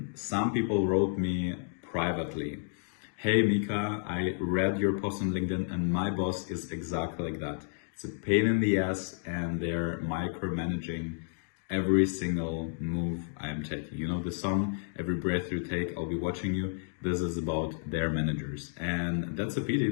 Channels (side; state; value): right; silent; digital silence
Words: some people wrote me privately, "Hey Mika, I read your post on LinkedIn and my boss is exactly like that. It's a pain in the ass and they're micromanaging every single move I am taking. You know the song, Every Breath You Take, I'll Be Watching You. This is about their managers." And that's a pity